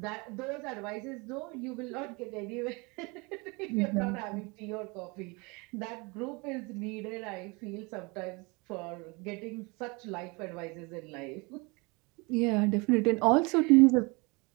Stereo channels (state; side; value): quieter; left; 27.7 dB